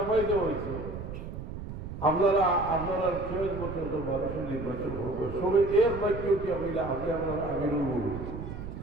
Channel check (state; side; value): noise; right; rumble, 8 dB below the sound